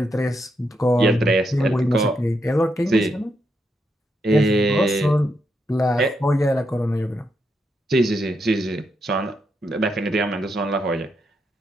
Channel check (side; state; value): both; normal; correlation 0.81